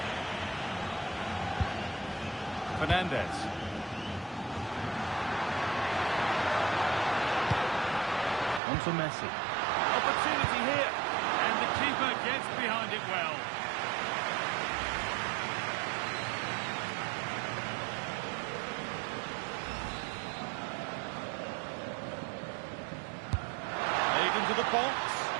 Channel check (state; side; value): drops out; left; at 8.6 s